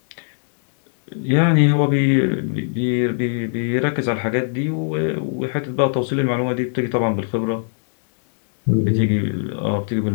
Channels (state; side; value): silent; right; digital silence